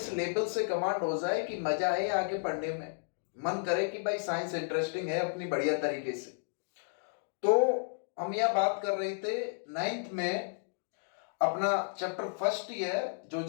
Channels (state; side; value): silent; right; digital silence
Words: लेवल से कमांड हो जाए कि मजा आए आगे पढ़ने में, मन करे कि भाई साइंस इंटरेस्टिंग है अपनी बढ़िया तरीके से। तो हम यह बात कर रहे थे 9th में अपना चैप्टर फर्स्ट ही है, जो